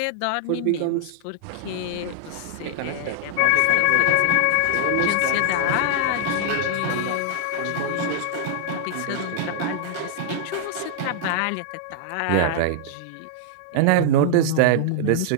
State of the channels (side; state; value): both; different; correlation -0.01